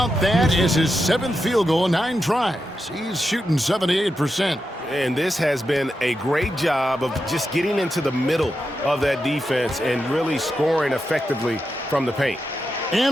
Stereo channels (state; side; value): normal; both; correlation 0.87